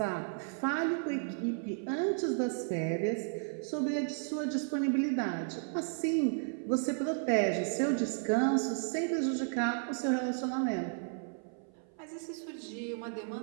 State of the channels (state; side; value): silent; left; 55 dB below the other